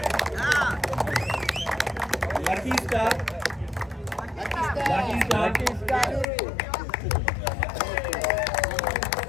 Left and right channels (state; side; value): drops out; right; at 6.2 s